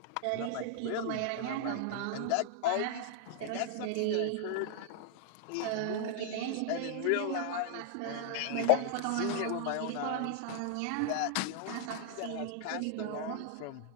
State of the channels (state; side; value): different; both; correlation -0.01